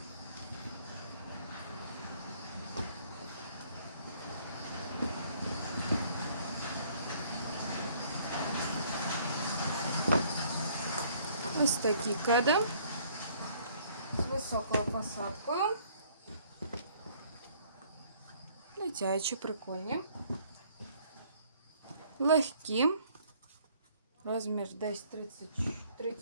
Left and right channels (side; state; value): both; inverted; correlation -0.60